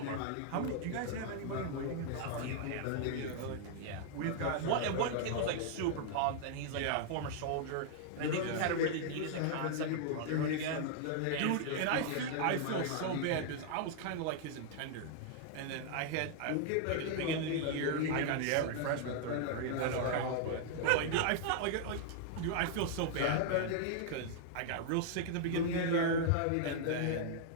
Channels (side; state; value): both; different; correlation -0.01